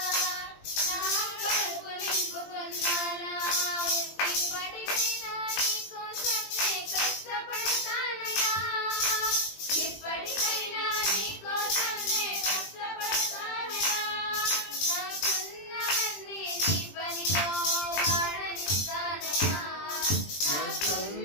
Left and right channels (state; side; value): late; right; 20 ms